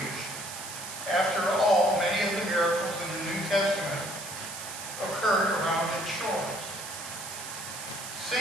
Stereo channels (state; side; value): noise; right; hiss, 9 dB below the sound